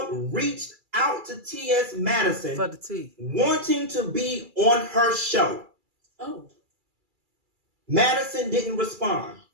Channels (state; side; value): late; left; 2.3 ms